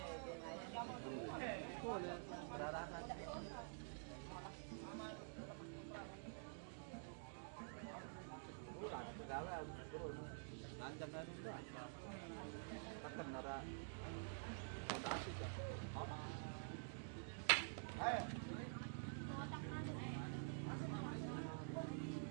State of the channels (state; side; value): silent; left; digital silence